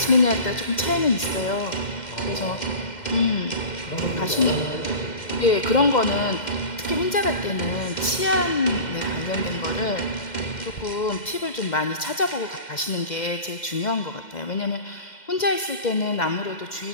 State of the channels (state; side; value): late; right; 2.1 ms